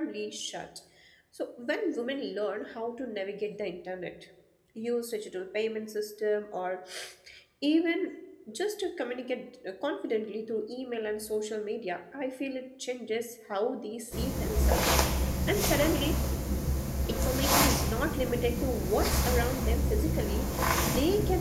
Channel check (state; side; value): identical; both; correlation 1.00